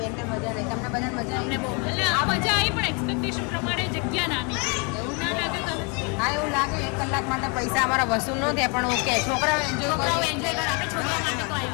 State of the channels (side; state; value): right; quieter; 33.6 dB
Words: મજા નહીં તમને બધાને મજા આવી. એટલે આ મજા આવી પણ એક્સપેક્ટેશન પ્રમાણે જગ્યા નાની એવું ના લાગે તમને? હા એવું લાગે 1 કલાક માટે પૈસા અમારા વસૂલ ન થયા પણ ઓકે છોકરાઓ એન્જોય છોકરાઓ એન્જોય કરે આપણે છોકરાઓ માટે તો